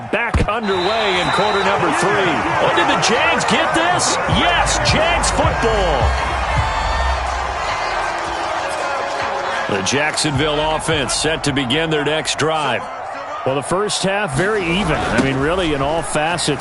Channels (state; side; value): identical; both; correlation 1.00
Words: back underway in quarter number 3. Oh, did the Jags get this? Yes, Jags football. The Jacksonville offense set to begin their next drive. Well, the first half, very even. I mean, really, in all